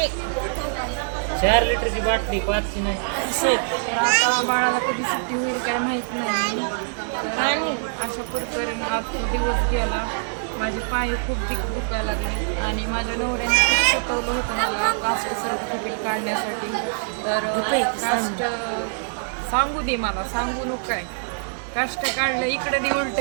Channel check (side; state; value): left; silent; digital silence